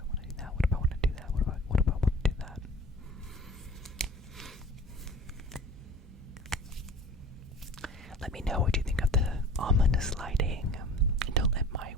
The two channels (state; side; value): normal; both; correlation 0.43